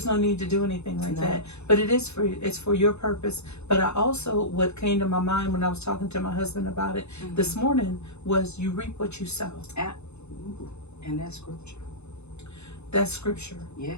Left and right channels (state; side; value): late; right; 0.81 ms